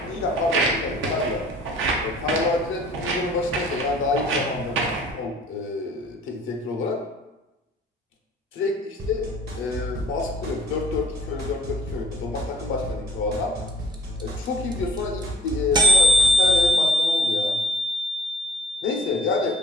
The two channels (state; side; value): normal; both; correlation 0.55